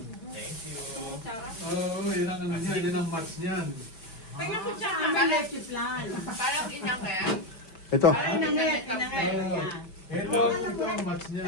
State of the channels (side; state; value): right; late; 5.2 ms